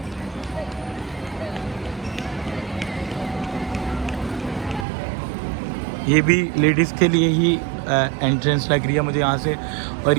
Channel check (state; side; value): drops out; left; at 4.9 s